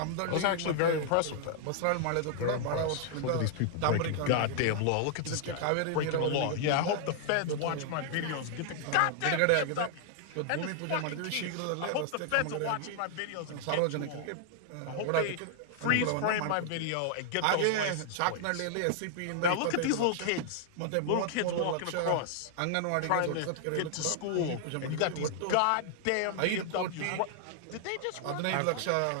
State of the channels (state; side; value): different; both; correlation -0.01